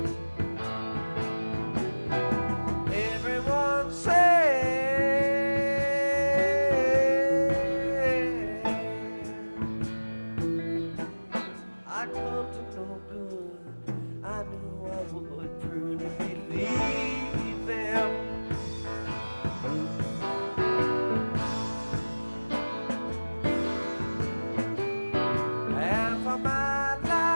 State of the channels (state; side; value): inverted; both; correlation -1.00